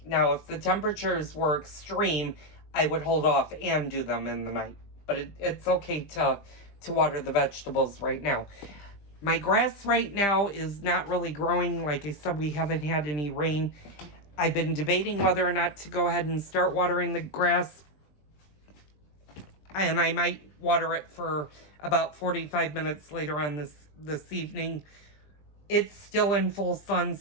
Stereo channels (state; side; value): late; right; 20 ms